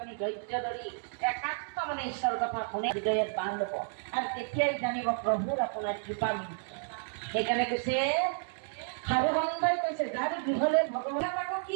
ধৈৰ্য ধৰি একান্ত মানে ঈশ্বৰৰ কথা শুনে হৃদয়ত বান্ধ ল'ব আৰু তেতিয়াই জানিব প্ৰভুৰ আপোনাৰ কৃপা মিলিছে। সেইকাৰণে কৈছে সাধু সন্তাই কৈছে যাৰ গৃহলৈ ভগৱানে আকৌ কি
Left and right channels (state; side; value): silent; left; digital silence